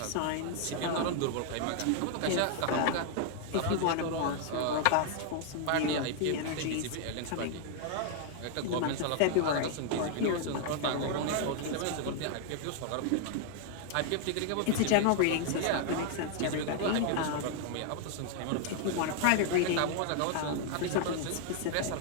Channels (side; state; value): both; different; correlation 0.00